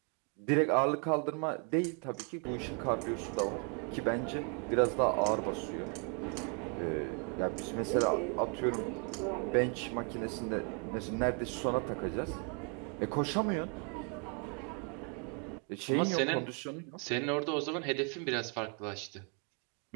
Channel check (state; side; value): quieter; left; 38.8 dB